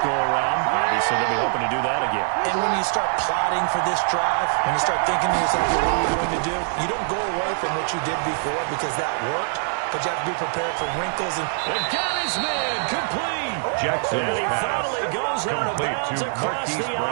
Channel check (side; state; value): left; silent; digital silence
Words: Obviously, they'll be hoping to do that again. And when you start plotting for this drive, when you start thinking to yourself, what are you going to do? You don't go away from what you did before because that worked, but you have to be prepared for wrinkles. And got his man complete. Jackson's and he pass finally goes out of complete bounds to across Marquise the